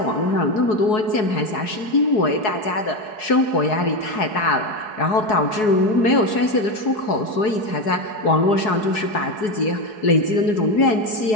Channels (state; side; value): late; right; 4.7 ms